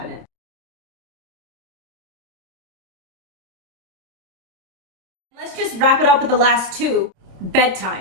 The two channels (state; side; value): late; left; 28 ms